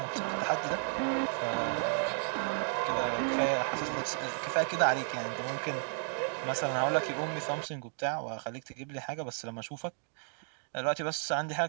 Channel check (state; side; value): silent; left; digital silence